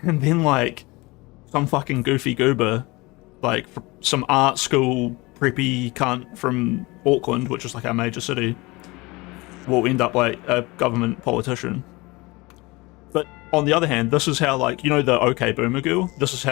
then, like, some fucking goofy goober, like, some art school preppy cunt from Auckland, which is like our major city, will end up like a government politician. But on the other hand, this is how, like, you know, the OK Boomer girl. This is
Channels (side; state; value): right; quieter; 23.4 dB